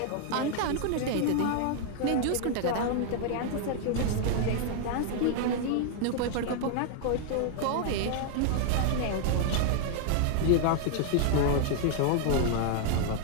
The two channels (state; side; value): different; both; correlation 0.00